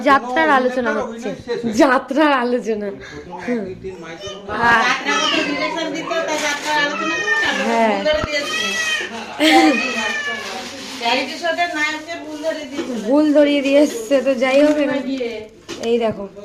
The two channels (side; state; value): both; identical; correlation 1.00